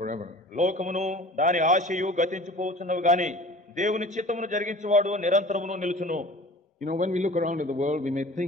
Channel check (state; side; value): normal; both; correlation 0.43